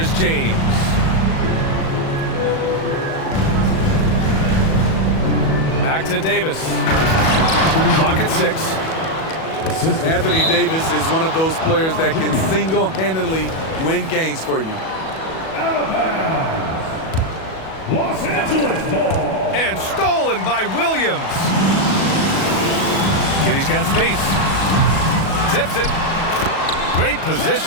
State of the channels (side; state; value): right; late; 37 ms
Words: James. Back to Davis. Clock at 6. Anthony Davis is one of those players that can single-handedly win games for you. Out of bounds. Los Angeles ball. And stolen by Williams. Giddy's got space. Tips it. Great